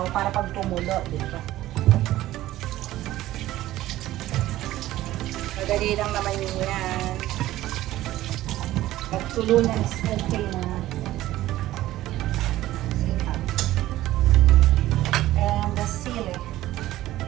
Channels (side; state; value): left; quieter; 15.2 dB